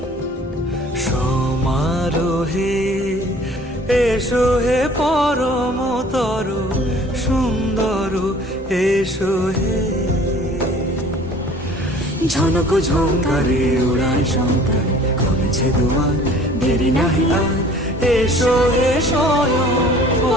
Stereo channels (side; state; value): both; normal; correlation 0.50